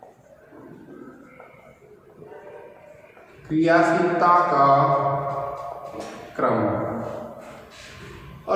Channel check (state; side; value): identical; both; correlation 1.00